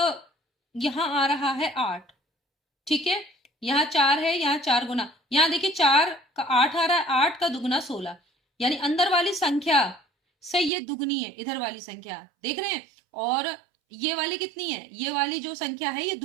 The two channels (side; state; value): left; drops out; at 10.7 s